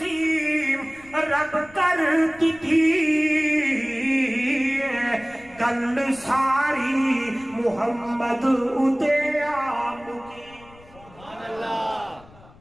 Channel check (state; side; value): noise; left; rumble, 24 dB below the sound